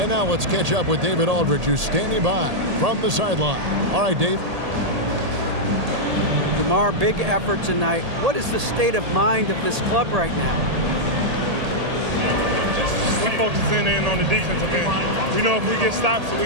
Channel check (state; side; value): late; left; 1.8 ms